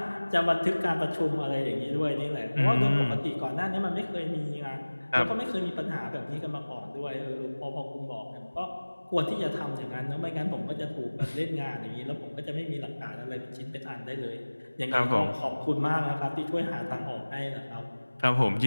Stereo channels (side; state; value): both; inverted; correlation -1.00